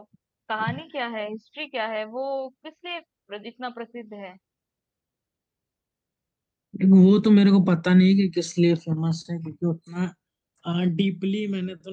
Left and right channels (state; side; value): identical; both; correlation 1.00